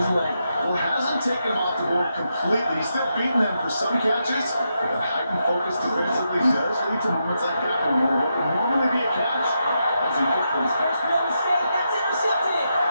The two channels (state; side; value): inverted; both; correlation -0.84